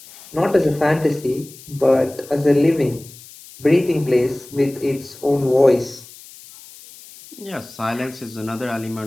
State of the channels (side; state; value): left; noise; hiss, 20 dB below the sound